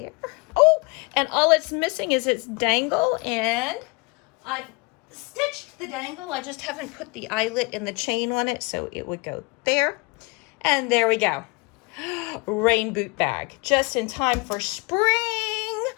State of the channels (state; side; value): quieter; right; 28.7 dB